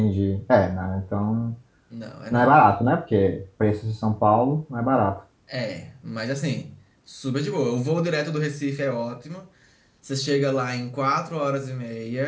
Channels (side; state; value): both; identical; correlation 1.00